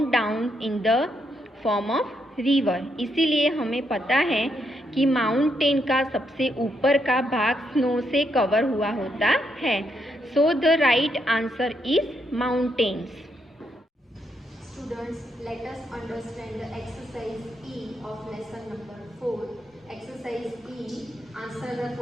down in the form of river. इसीलिए हमें पता है कि माउंटेन का सबसे ऊपर का भाग स्नो से कवर हुआ होता है. So the right answer is mountains. Students, let us understand the exercise E of lesson number 4. Exercise E, answer the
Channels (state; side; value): normal; both; correlation 0.78